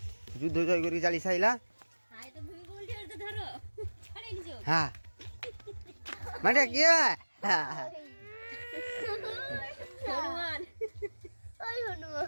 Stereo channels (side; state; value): both; inverted; correlation -1.00